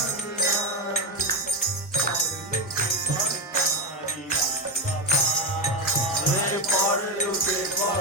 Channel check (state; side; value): normal; both; correlation 0.11